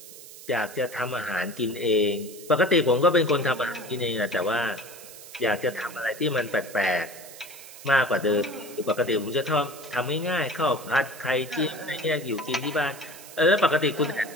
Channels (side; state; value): right; noise; hiss, 16 dB below the sound